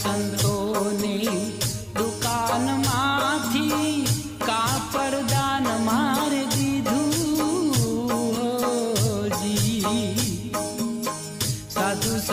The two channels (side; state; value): both; identical; correlation 1.00